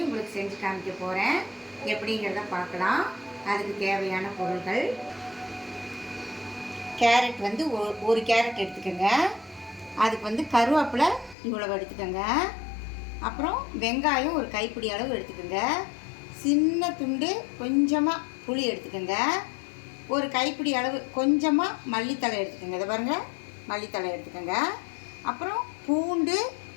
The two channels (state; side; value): drops out; right; at 11.4 s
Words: உங்களுக்கு செஞ்சு காமிக்க போகிறேன். எப்படிங்கிறத பார்க்கலாம். அதுக்கு தேவையான பொருட்கள்: கேரட் வந்து ஒரு கேரட் எடுத்துக்கோங்க. அதுக்கு வந்து கருவேப்பிலை இவ்வளவு எடுத்துக்கோங்க. அப்புறம் வெங்காயம் ஒரு கைப்பிடி அளவு எடுத்துக்கோங்க. சின்ன துண்டு கொஞ்சமாக புளி எடுத்துக்கோங்க. ஒரு கைப்பிடி அளவு கொஞ்சமாக மல்லித்தழை எடுத்துக்கோங்க. இதை பாருங்கள், மல்லித்தழை எடுத்துக்கோங்க. அப்புறம் பூண்டு